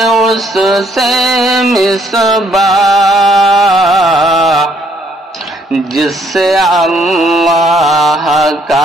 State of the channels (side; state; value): both; normal; correlation 0.67